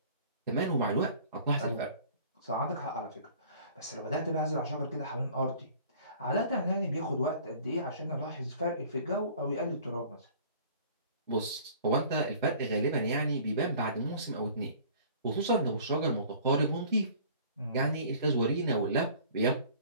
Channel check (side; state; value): both; inverted; correlation -0.49